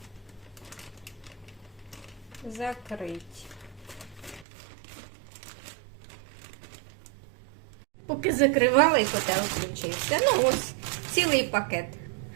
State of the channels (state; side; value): drops out; left; at 4.5 s